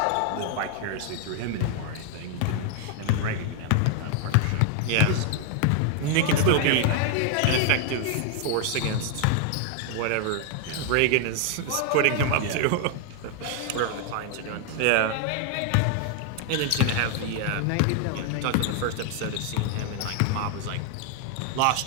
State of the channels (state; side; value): different; both; correlation 0.00